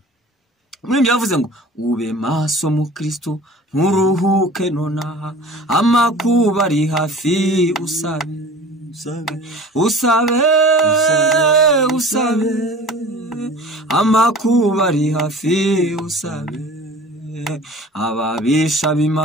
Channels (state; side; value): normal; both; correlation 0.42